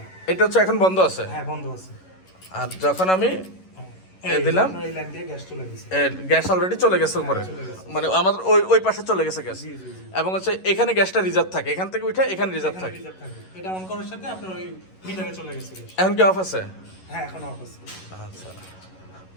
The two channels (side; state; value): right; late; 11 ms